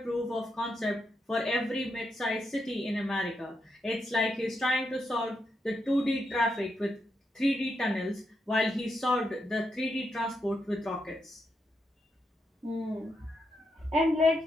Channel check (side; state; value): both; normal; correlation 0.83